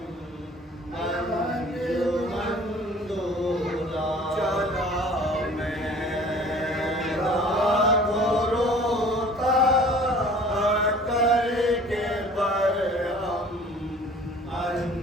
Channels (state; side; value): normal; both; correlation 0.49